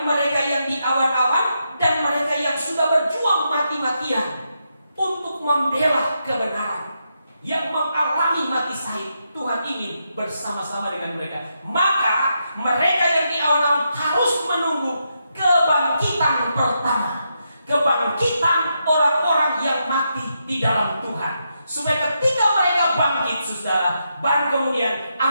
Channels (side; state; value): both; inverted; correlation -0.83